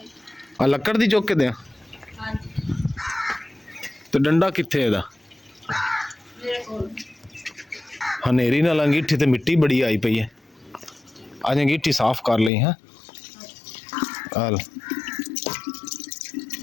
लकड़ दी चुक के दें तो डंडा कित्थे इहदा? हनेरी नाल अंगीठी ते मिट्टी बड़ी आई पई है। अज अंगीठी साफ कर ली है।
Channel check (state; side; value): drops out; right; at 12.5 s